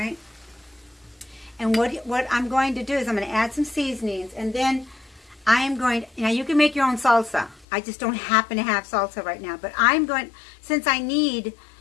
And what I'm going to do is I'm going to add some seasonings, and then I am going, now you can make your own salsa. I just don't happen to have salsa right now, but I'm going, since I need,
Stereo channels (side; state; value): right; drops out; at 7.7 s